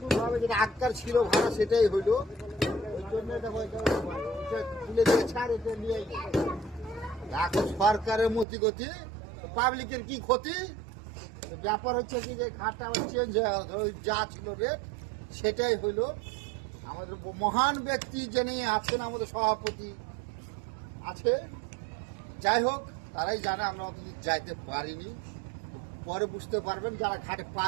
ভাবে যেটা আগকার ছিল ভাড়া সেটাই হইলো। ওই জন্য দেখো তুলে দিয়েছে আর এটা নিয়ে এখন সরকারের মতি গতি, পাবলিকের কি ক্ষতি। ব্যাপার হচ্ছে কি যে ঘাটটা আবার চেঞ্জ হয়ে যা ছিল রেট সেটাই হইলো। আমাদের মহান ব্যক্তি যিনি আছেন আমাদের সভাপতি আছে, যাই হোক তারাই জানে, আমরা অতদিন যাইতে পারিনি। পরে বুঝতে পারবেন, যারা ঘাটে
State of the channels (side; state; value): left; drops out; at 8.5 s